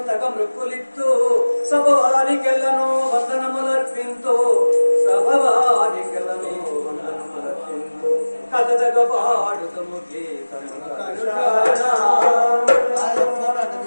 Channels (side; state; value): both; inverted; correlation -1.00